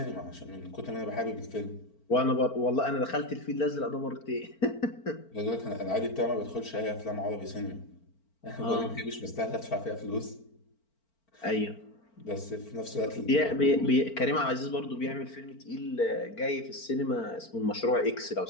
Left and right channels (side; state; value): right; late; 4.4 ms